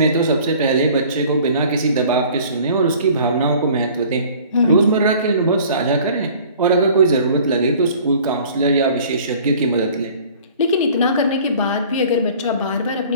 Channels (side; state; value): both; inverted; correlation -0.49